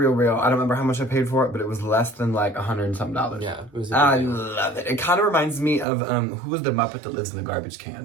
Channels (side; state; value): left; drops out; at 5.9 s